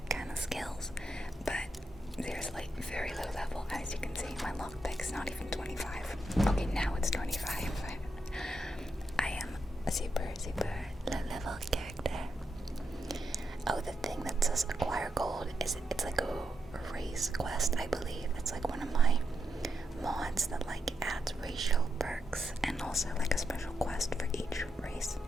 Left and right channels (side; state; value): both; normal; correlation 0.84